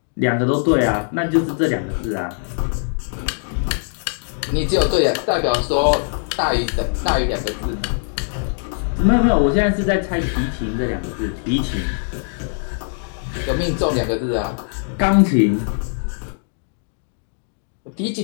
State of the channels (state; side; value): silent; right; digital silence